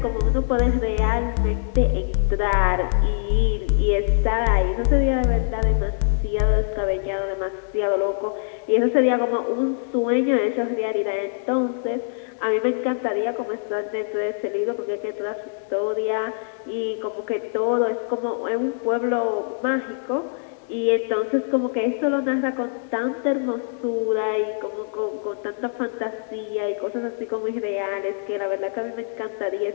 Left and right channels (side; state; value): right; silent; 63 dB below the other